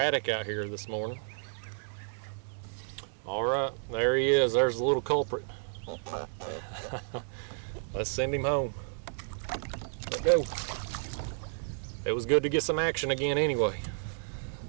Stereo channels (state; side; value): silent; left; digital silence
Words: out here this morning. All right, there he is. There's the little culprit. Let's send him home. Let go. It was good to get some action again anyway.